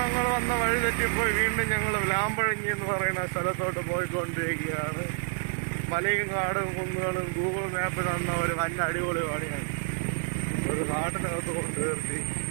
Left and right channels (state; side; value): silent; left; digital silence